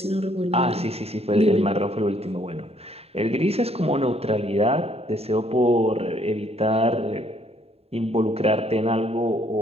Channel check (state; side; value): late; left; 0.29 ms